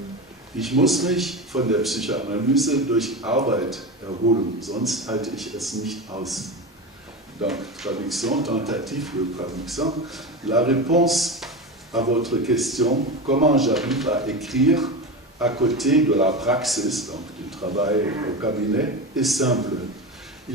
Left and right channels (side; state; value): both; normal; correlation 0.22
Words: ich muss mich von der Psychoanalyse durch Arbeit erholen, sonst halte ich es nicht aus. donc traduction, tentative de traduction. La réponse à votre question, comment j'arrive à écrire à côté de la praxis, donc du travail au cabinet, est simple.